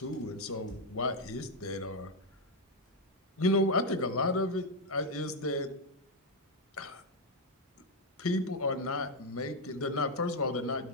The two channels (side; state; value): both; normal; correlation 0.02